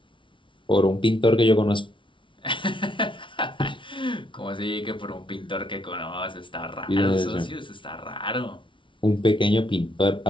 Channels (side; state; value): right; late; 0.24 ms